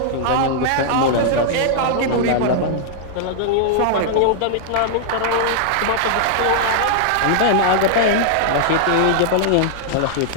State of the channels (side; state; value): both; different; correlation -0.01